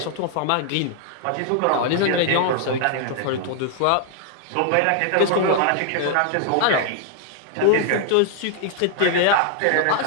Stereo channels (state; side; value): different; both; correlation 0.00